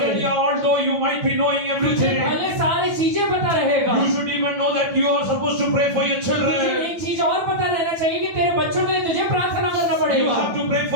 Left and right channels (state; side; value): late; left; 9.1 ms